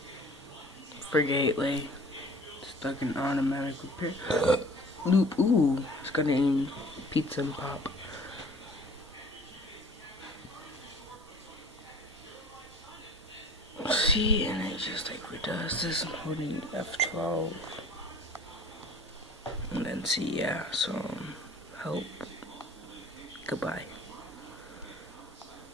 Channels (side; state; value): both; normal; correlation 0.47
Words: For Gateway. Stuck in automatic repair. Loop, ooh. It's gonna eat pizza and pop. See, and it just like redoes this. I'm holding F12. And then see, yeah, so help. Goodbye.